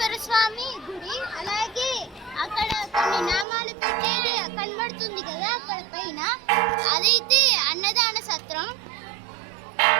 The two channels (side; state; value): left; drops out; at 3.5 s